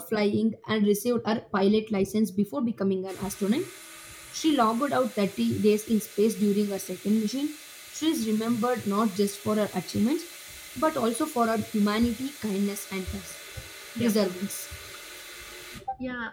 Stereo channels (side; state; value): both; identical; correlation 1.00